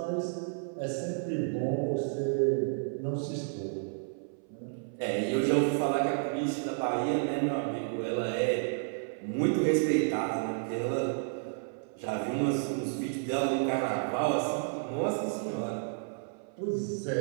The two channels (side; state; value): left; silent; 57 dB below the other